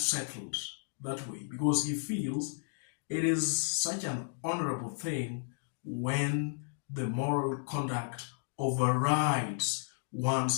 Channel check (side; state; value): right; silent; digital silence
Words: that way, because he feels it is such an honorable thing when the moral conduct overrides